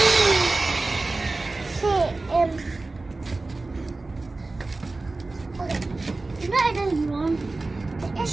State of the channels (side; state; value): left; quieter; 3.3 dB